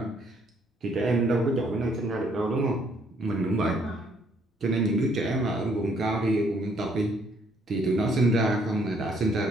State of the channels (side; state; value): both; normal; correlation 0.67